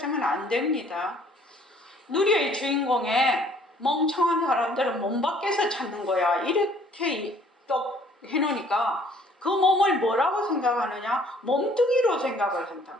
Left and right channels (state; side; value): normal; both; correlation 0.58